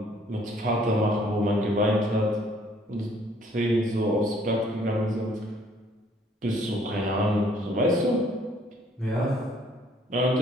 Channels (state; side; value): normal; both; correlation 0.61